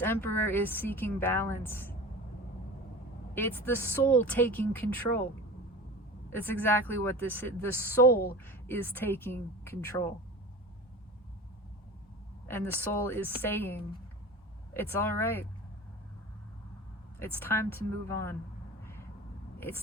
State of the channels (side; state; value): both; normal; correlation 0.35